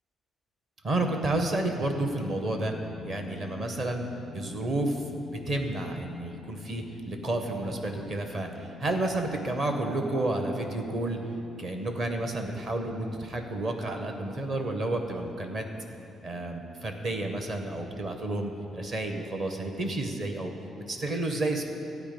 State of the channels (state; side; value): normal; both; correlation 0.73